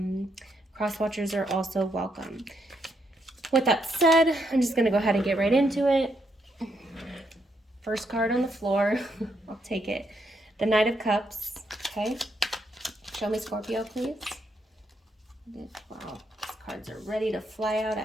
cross watchers are also welcome. With that said, I'm just going to go ahead and get right into it. First card on the floor. I'll take it. The Knight of Cups. Okay. Show me Scorpio, please. Wow. These cards are ready to fly out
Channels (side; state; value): both; normal; correlation 0.77